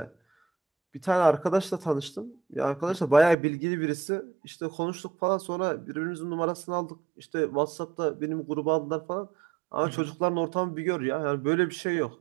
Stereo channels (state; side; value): drops out; left; at 3.4 s